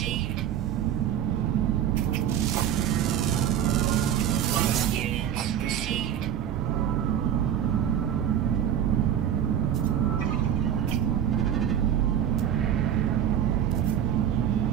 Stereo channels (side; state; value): left; quieter; 9.8 dB